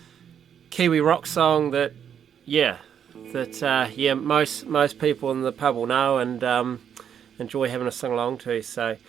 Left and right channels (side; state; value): left; quieter; 8.4 dB